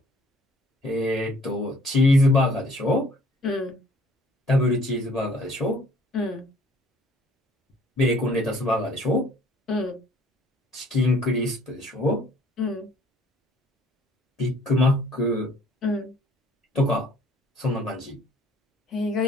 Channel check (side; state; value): both; normal; correlation 0.58